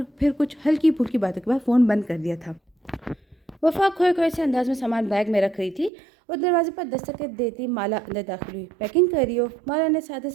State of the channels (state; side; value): drops out; left; at 5.9 s